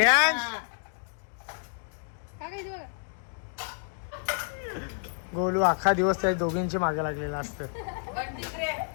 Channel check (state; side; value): silent; right; 57 dB below the other